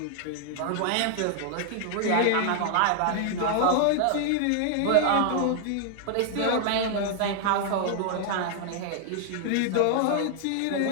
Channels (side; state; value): both; different; correlation -0.01